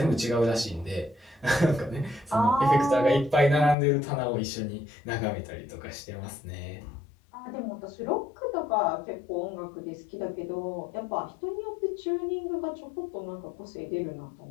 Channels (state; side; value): drops out; right; at 3.8 s